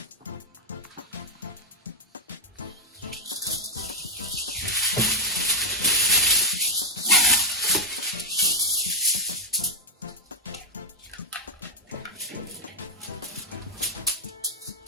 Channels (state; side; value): normal; both; correlation 0.02